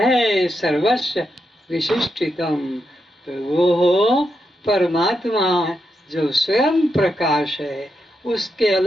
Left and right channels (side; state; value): both; normal; correlation 0.84